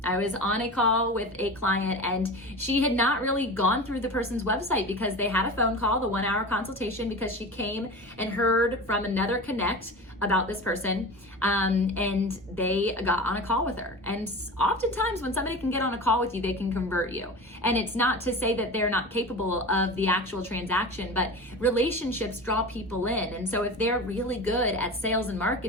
I was on a call with a client and she had not really gone through the person's website because they had a phone call, the 1-hour consultation, because she came and heard from another connect about this person, and they got on a call with her. And oftentimes when somebody can get on a call with you, they can convert you. And it's not to say that they're not capable of the actual transaction, but relationships draw people in. And so if they're really good at sales and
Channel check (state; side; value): normal; both; correlation 0.30